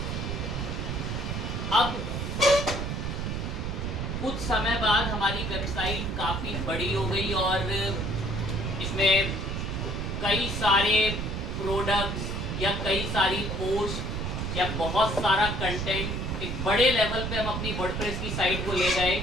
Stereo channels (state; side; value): noise; right; rumble, 2 dB below the sound